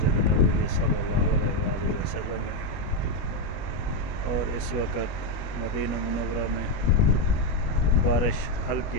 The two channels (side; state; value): right; late; 21 ms